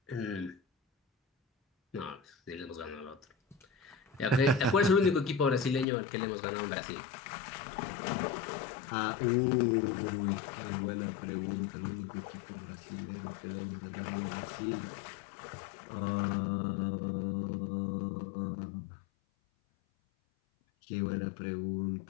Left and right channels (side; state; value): right; drops out; at 5.9 s